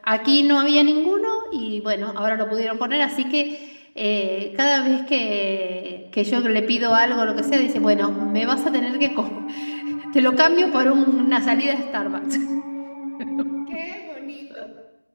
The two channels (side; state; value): both; inverted; correlation -1.00